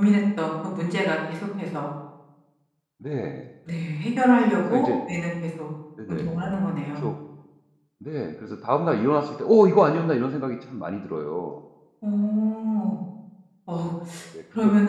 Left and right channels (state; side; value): identical; both; correlation 1.00